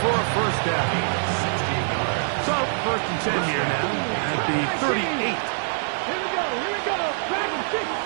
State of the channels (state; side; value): silent; left; digital silence